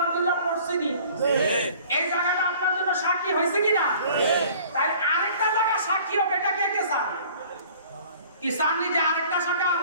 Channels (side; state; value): both; inverted; correlation -0.50